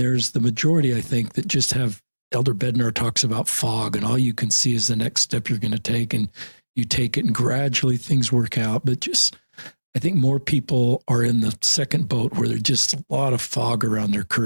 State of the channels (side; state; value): both; inverted; correlation -1.00